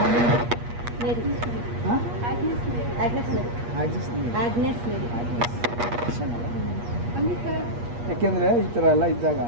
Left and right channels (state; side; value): late; left; 8.4 ms